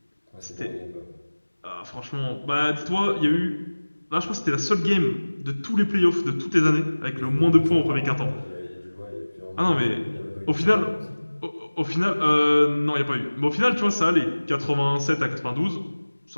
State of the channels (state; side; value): inverted; both; correlation -1.00